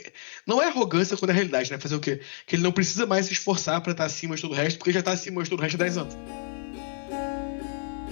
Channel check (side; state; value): right; silent; 60 dB below the other